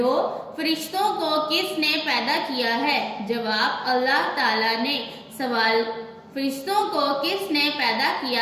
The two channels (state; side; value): identical; both; correlation 1.00